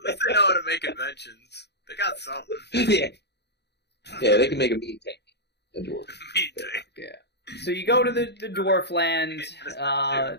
least they know how to make inventions. They got something. Yeah, they can make a meat tank. A dwarf. Me too. So you go to the dwarf land,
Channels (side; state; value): right; late; 0.49 ms